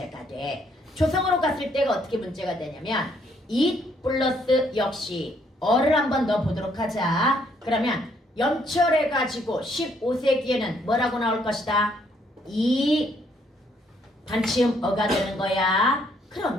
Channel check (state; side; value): normal; both; correlation 0.69